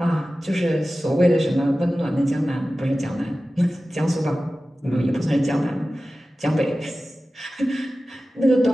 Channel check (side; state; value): both; normal; correlation 0.95